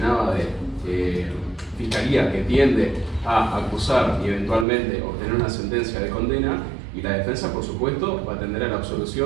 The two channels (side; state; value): left; drops out; at 4.7 s